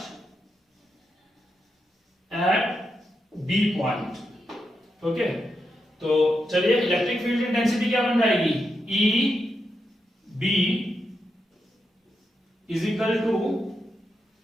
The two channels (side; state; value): both; normal; correlation 0.85